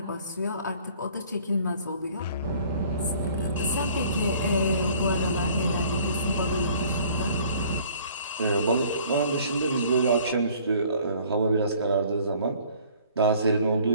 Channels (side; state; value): both; inverted; correlation -0.54